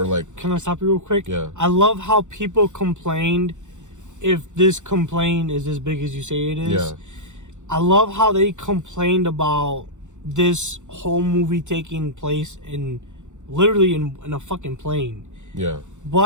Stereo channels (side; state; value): left; late; 0.85 ms